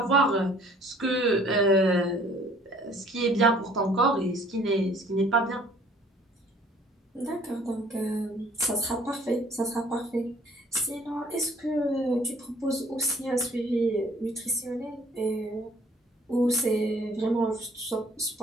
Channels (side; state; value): both; normal; correlation 0.56